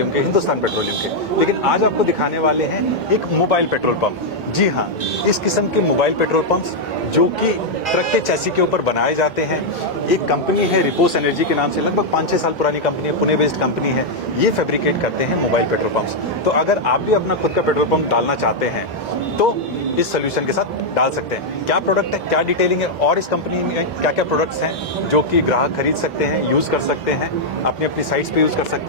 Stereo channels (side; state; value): both; normal; correlation -0.02